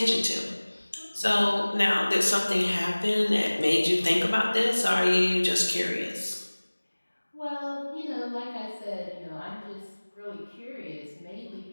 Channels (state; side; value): inverted; both; correlation -1.00